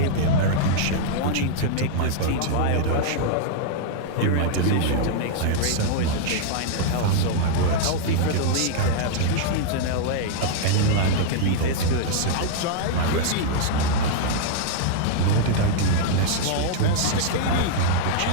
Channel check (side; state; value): both; different; correlation -0.01